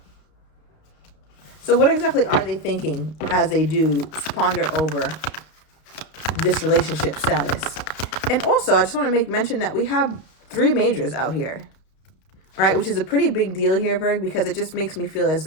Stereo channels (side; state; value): right; late; 32 ms